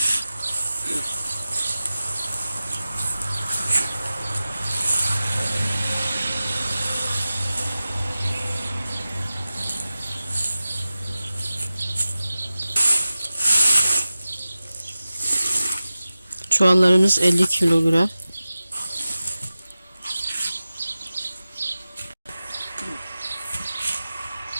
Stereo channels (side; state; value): both; inverted; correlation -0.95